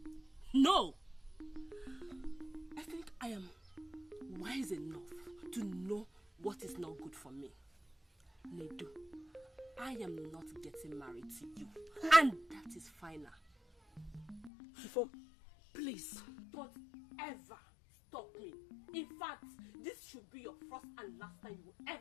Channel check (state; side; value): drops out; right; at 14.5 s